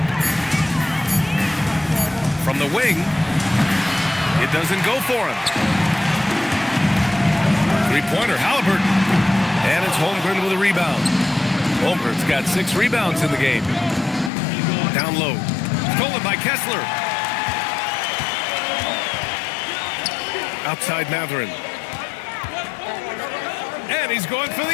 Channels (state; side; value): drops out; right; at 14.3 s